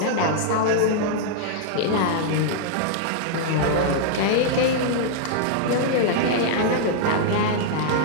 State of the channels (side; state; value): both; different; correlation -0.01